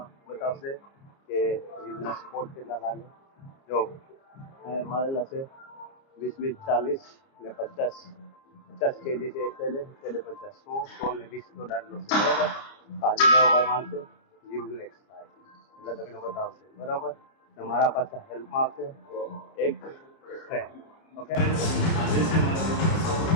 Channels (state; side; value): late; right; 30 ms